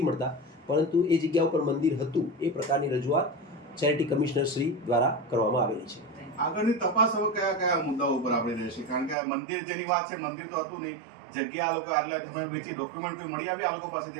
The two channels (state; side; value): drops out; left; at 9.2 s